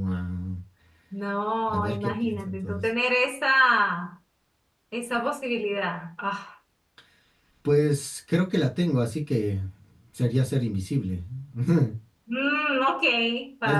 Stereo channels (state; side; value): identical; both; correlation 1.00